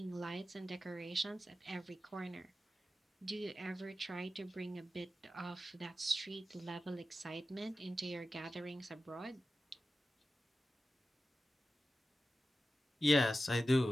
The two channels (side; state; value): both; normal; correlation 0.93